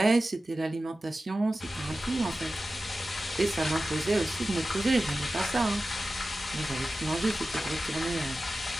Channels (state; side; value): normal; both; correlation 0.94